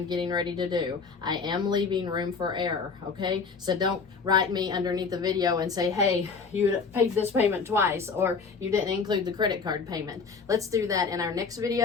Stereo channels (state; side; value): quieter; right; 5.0 dB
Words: getting ready to do. I am leaving room for error, okay? So don't write me underneath the video and say, hey, you paid this payment twice, or you didn't include the credit card payment. Let's do that in our next